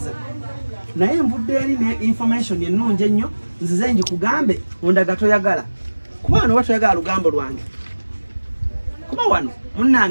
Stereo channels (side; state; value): both; inverted; correlation -1.00